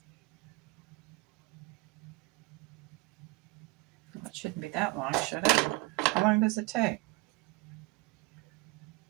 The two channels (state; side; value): quieter; left; 23.2 dB